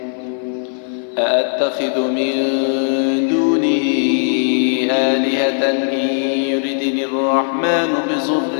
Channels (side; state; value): right; silent; 57 dB below the other